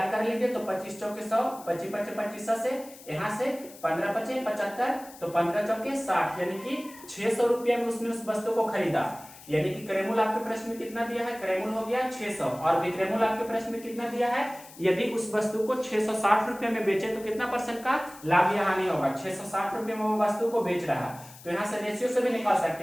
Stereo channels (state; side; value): noise; left; hiss, 19 dB below the sound